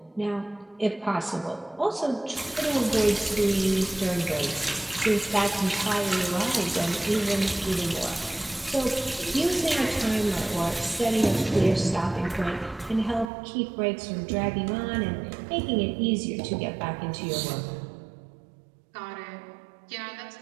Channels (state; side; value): drops out; left; at 13.3 s